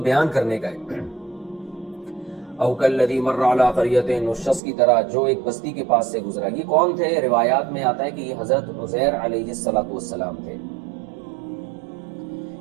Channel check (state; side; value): drops out; left; at 4.6 s